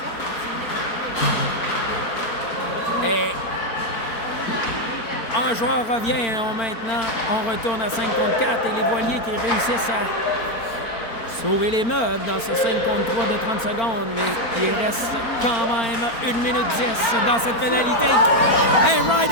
Et un joueur revient maintenant. On retourne à 5 contre 4 et les Voiliers qui réussissent à sauver les meubles dans ce 5 contre 3 de 30 secondes. Mais il reste quand même 1 minute 10 dans cette pénalité. Et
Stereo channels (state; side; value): late; right; 4.4 ms